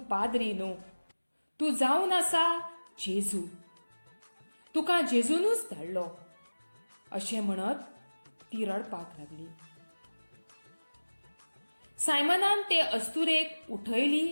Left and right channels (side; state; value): both; inverted; correlation -1.00